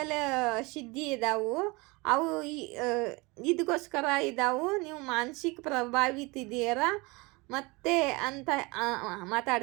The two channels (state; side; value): quieter; left; 25.5 dB